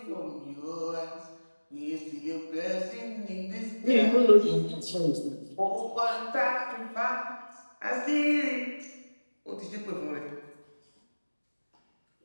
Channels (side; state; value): both; inverted; correlation -1.00